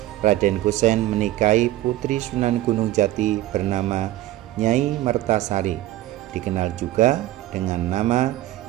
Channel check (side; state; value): left; quieter; 15.3 dB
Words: Raden Kusen menikahi putri Sunan Gunung Jati bernama Nyai Mertasari, dikenal juga dengan nama